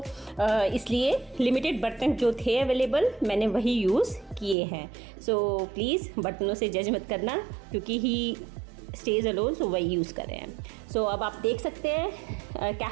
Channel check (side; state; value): left; drops out; at 4.5 s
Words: इसलिए लिमिटेड बर्तन जो थे अवेलेबल मैंने वही यूज़ किए हैं। सो प्लीज़ बर्तनों से जज मत करना, क्योंकि ही स्टेज अलोन, सो वही यूज़ कर रहे हैं। सो अब आप देख सकते हैं